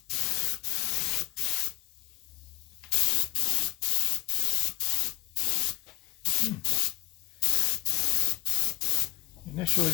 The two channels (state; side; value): quieter; right; 19.1 dB